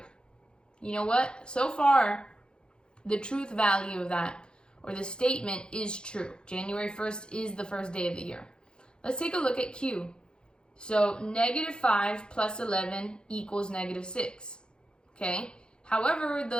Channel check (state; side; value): late; right; 0.049 ms